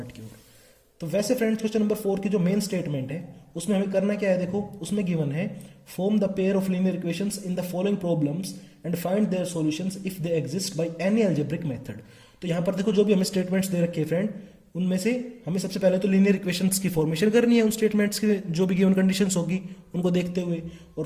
की ओर। तो वैसे फ्रेंड्स, क्वेश्चन नंबर 4 की जो मेन स्टेटमेंट है उसमें हमें करना क्या है, देखो उसमें गिवन है form the pair of linear equations in the following problems and find their solutions if they exist by any algebraic method. तो यहाँ पर देखो जो भी हमें स्टेटमेंट्स दे रखे हैं फ्रेंड, उनमें से हमें सबसे पहले तो लीनियर इक्वेशंस की फॉर्मेशन करनी है, उन स्टेटमेंट्स की जो भी गिवन कंडीशंस होगी उनको देखते हुए, और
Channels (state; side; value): identical; both; correlation 1.00